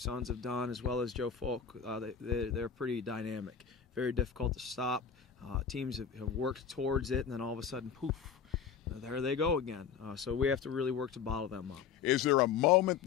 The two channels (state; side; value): quieter; right; 7.1 dB